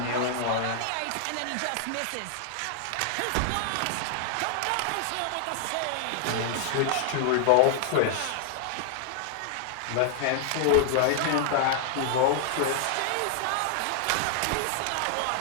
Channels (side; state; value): both; different; correlation 0.00